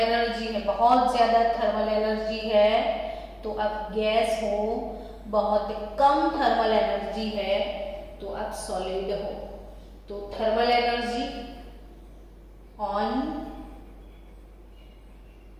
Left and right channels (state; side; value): identical; both; correlation 1.00